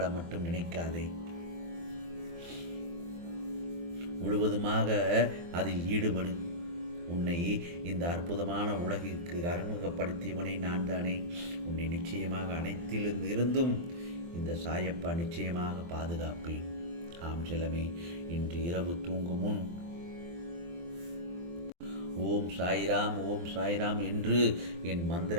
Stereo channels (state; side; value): late; left; 23 ms